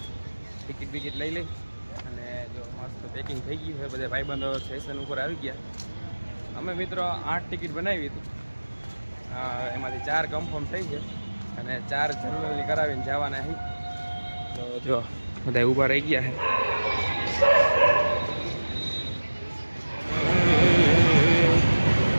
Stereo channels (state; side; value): inverted; both; correlation -1.00